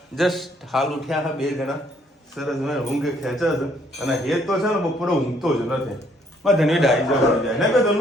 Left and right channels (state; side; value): normal; both; correlation 0.66